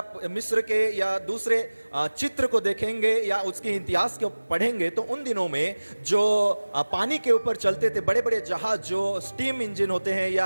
मिस्र के या दूसरे चित्र को देखेंगे या उसके इतिहास को पढ़ेंगे, तो उन दिनों में जो पानी के ऊपर चलते थे बड़े बड़े जहाज, जो स्टीम इंजन होते हैं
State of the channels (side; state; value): both; inverted; correlation -1.00